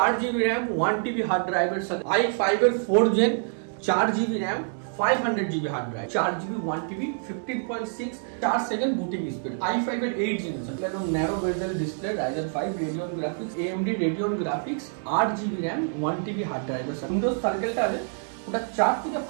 RAM 1TB hard ড্রাইভের সাথে i5 এর 4 gen 4GB RAM 500GB hard drive 4GB 1TB 15.6 4 second booting speed i5 এর 8 generation একদম narrow bezel display Ryzen 5 Radeon graphics AMD Radeon graphics 8GB RAM 1TB hard ড্রাইভের সাথে Windows সার্কেলটা আছে ওটা 4 থেকে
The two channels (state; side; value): silent; left; 60 dB below the other